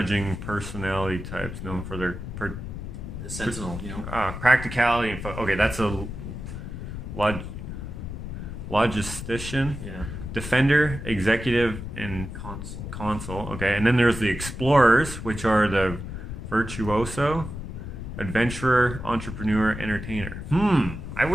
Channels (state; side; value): noise; left; rumble, 8 dB below the sound